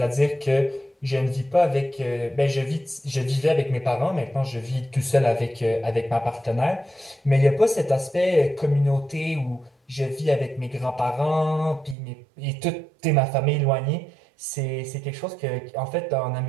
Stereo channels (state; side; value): drops out; left; at 12.0 s